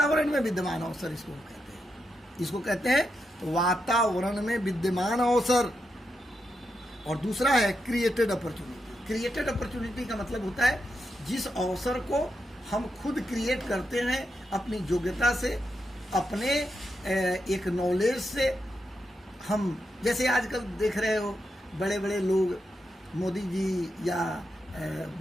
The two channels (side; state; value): both; normal; correlation 0.85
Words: में विद्यमान अवसर इसको कहते हैं। इसको कहते हैं वातावरण में विद्यमान अवसर। और दूसरा है क्रिएटेड अपॉर्चुनिटी। क्रिएटेड अपॉर्चुनिटी का मतलब होता है जिस अवसर को हम खुद क्रिएट करते हैं अपनी योग्यता से, अपने एक नॉलेज से। हम जैसे आजकल देख रहे हो, बड़े बड़े लोग, मोदी जी या